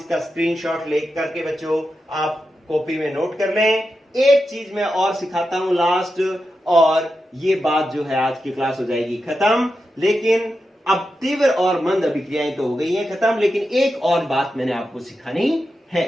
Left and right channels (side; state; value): both; normal; correlation 0.89